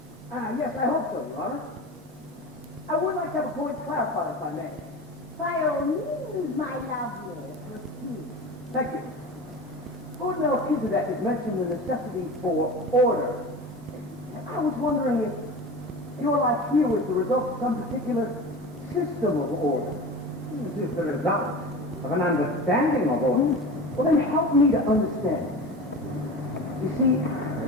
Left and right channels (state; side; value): normal; both; correlation 0.32